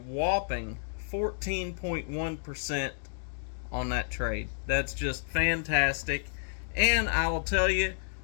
14.1% on that trade. That's just fantastic. And I will tell you,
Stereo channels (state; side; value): silent; right; digital silence